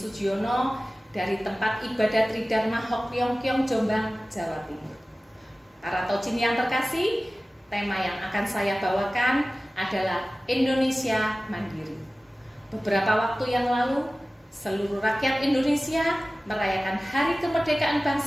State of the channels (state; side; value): normal; both; correlation 0.97